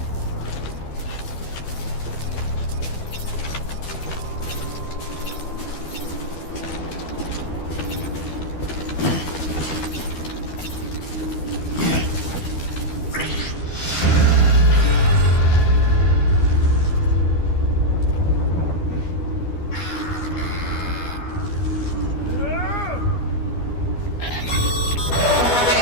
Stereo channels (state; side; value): late; right; 12 ms